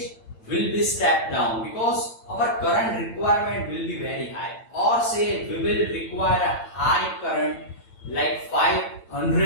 will be stepped down because our current requirement will be very high, or say we will require a high current like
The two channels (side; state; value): right; late; 8.8 ms